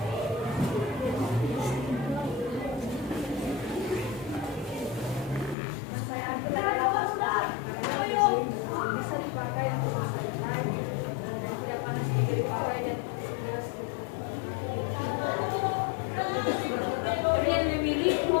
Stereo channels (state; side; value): drops out; right; at 5.6 s